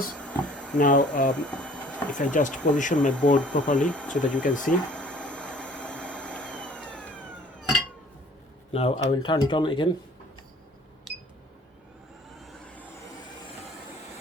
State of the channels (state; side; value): normal; both; correlation 0.53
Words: Now if I just position my board properly so that you can see, now I will turn it on again.